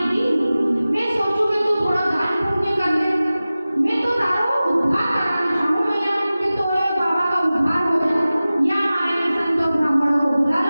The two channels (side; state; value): both; inverted; correlation -0.96